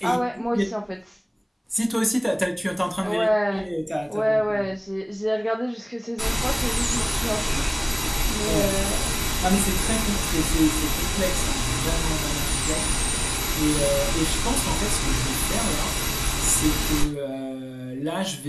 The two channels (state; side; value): identical; both; correlation 1.00